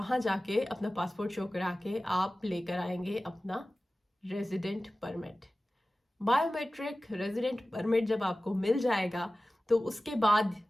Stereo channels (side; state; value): both; normal; correlation 0.96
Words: जाके अपना पासपोर्ट शो करा के आप लेकर आएंगे अपना resident permit. Biometric resident permit जब आपको मिल जाएगा तो उसके बाद